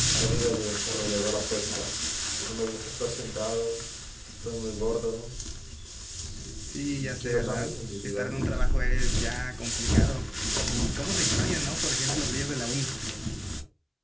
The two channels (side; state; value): both; identical; correlation 1.00